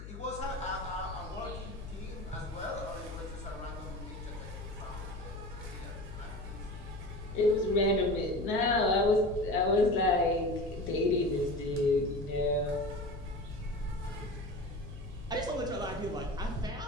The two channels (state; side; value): noise; left; hum, 11 dB below the sound